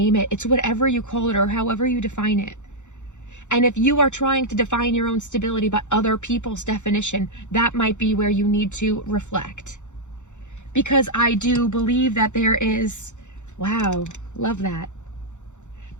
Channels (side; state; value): right; late; 0.84 ms